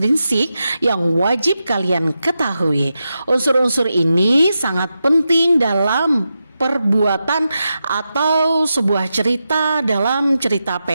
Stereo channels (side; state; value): both; inverted; correlation -0.89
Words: yang wajib kalian ketahui. Unsur-unsur ini sangat penting dalam perbuatan atau sebuah cerita dalam cerita